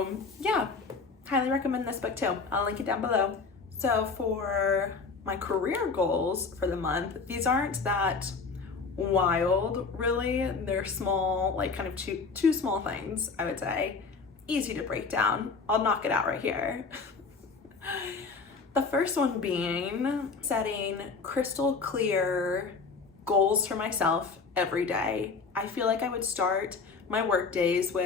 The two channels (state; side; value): quieter; right; 4.6 dB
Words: yeah, highly recommend this book too. I'll link it down below. So for my career goals for the month, these aren't that wild really. They're small, like kind of two small things, I would say. Easy to break down. I'll knock it out right here. The first one being setting crystal clear goals for myself every day. I feel like I would start my work days